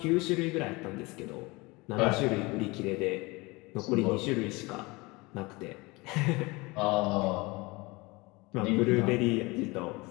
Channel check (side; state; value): right; quieter; 24.2 dB